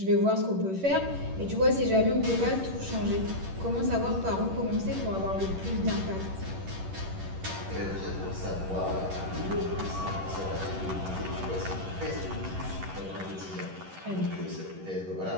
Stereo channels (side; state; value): left; late; 11 ms